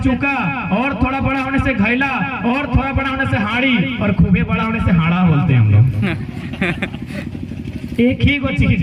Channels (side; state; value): both; identical; correlation 1.00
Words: और थोड़ा बड़ा होने से घैला, और थोड़ा बड़ा होने से हाड़ी, और खूबे बड़ा होने से हाड़ा बोलते हैं हम लोग। एक ही वो चीज